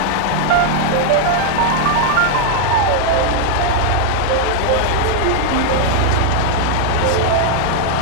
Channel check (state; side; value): different; both; correlation 0.00